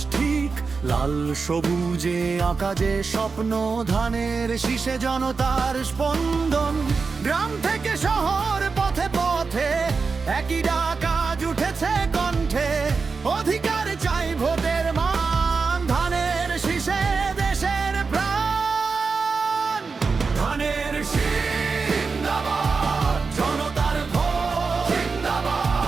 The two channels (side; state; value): left; quieter; 4.7 dB